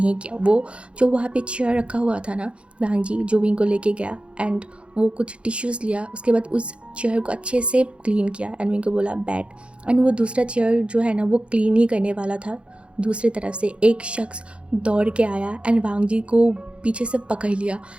किया। वो जो वहाँ पे चेयर रखा हुआ था ना, वांग जी जो विंग को लेके गया एंड वो कुछ टिश्यूज़ लिया, उसके बाद उस चेयर को अच्छे से क्लीन किया एंड विंग को बोला बैठ। एंड वो दूसरा चेयर जो है ना, वो क्लीन ही करने वाला था। दूसरी तरफ से एक शख्स दौड़ के आया एंड वांग जी को पीछे से पकड़ लिया।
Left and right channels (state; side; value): late; left; 0.059 ms